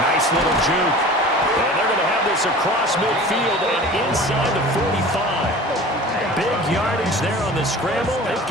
Nice little juke. And they're going to have this across midfield and inside the 45. Big yardage there on the scramble. It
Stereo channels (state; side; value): normal; both; correlation 0.40